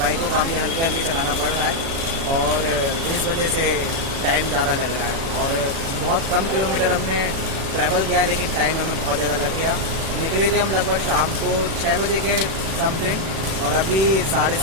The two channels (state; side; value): late; left; 36 ms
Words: को काफ़ी हल्के हल्के चलाना पड़ रहा है, और इस वजह से टाइम ज़्यादा लग रहा है। और बहुत कम किलोमीटर हमने ट्रैवल किया है, लेकिन टाइम हमें बहुत ज़्यादा लग गया। निकले थे हम लगभग शाम को 6 बजे के समथिंग, और अभी